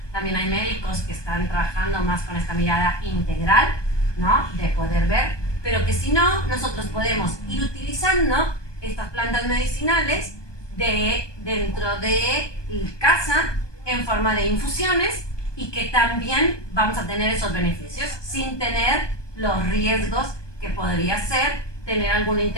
También hay médicos que están trabajando más con esta mirada integral, ¿no? De poder ver, pero que si no, nosotros podemos ir utilizando estas plantas medicinales dentro de casa en forma de infusiones y que también vamos a tener esos beneficios sin tener los riesgos que podría ser tener alguna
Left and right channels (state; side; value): late; right; 1.2 ms